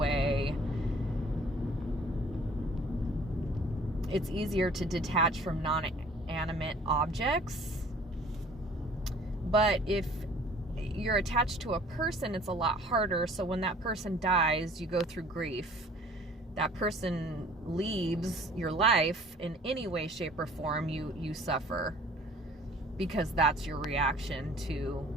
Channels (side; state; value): both; normal; correlation 0.52